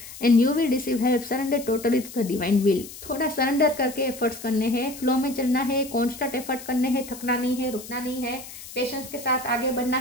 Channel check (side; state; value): left; noise; hiss, 14 dB below the sound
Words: and you will receive help, surrender totally to the divine will. थोड़ा सरेंडर करके एफर्ट्स करने हैं, फ्लो में चलना है, कॉन्स्टेंट एफर्ट करने हैं, थकना नहीं है, रुकना नहीं है, पेशेंस के साथ आगे बढ़ना